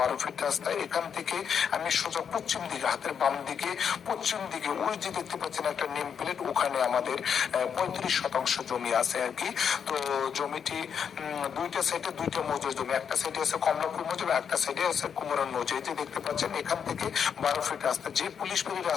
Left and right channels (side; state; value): right; quieter; 7.4 dB